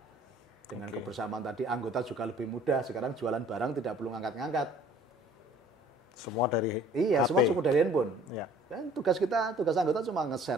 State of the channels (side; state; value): both; normal; correlation 0.53